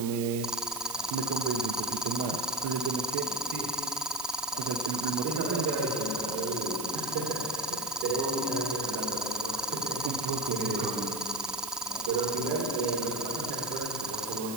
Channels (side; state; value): right; noise; hiss, 8 dB below the sound